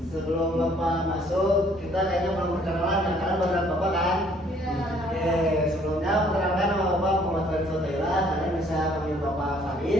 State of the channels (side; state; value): both; normal; correlation 0.61